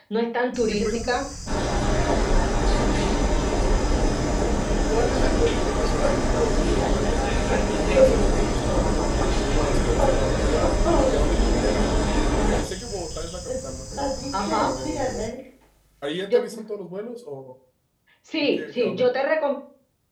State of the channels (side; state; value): both; identical; correlation 1.00